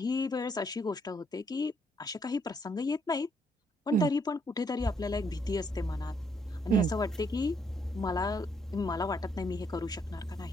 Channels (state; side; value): normal; both; correlation 0.72